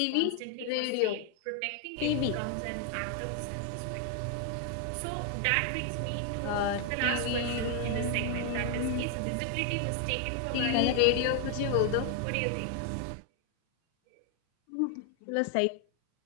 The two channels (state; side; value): different; both; correlation 0.00